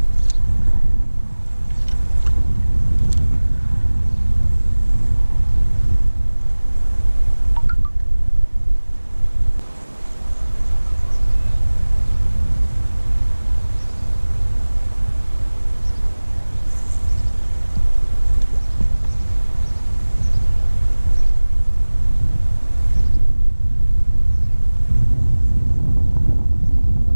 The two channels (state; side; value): inverted; both; correlation -1.00